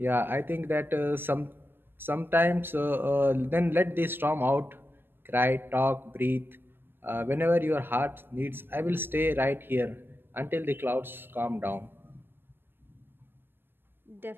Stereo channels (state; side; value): late; left; 0.099 ms